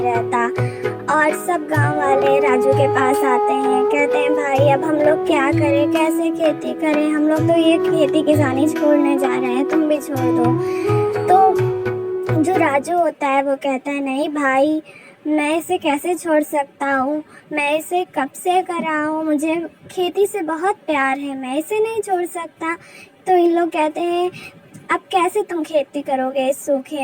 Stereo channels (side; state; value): both; identical; correlation 1.00